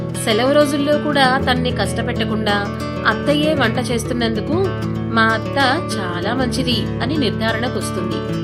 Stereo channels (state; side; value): identical; both; correlation 1.00